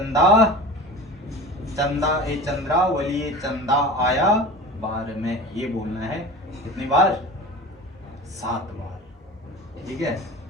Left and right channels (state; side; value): normal; both; correlation 0.35